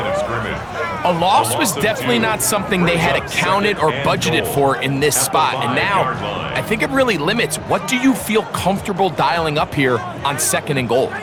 A loss was definitely not something they had accounted or budgeted for in this spot. And now, I think it really limits what do you feel comfortable dialing up here on 2nd and goal.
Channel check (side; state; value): both; identical; correlation 1.00